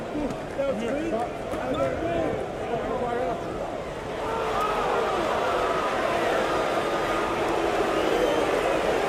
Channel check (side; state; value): both; identical; correlation 1.00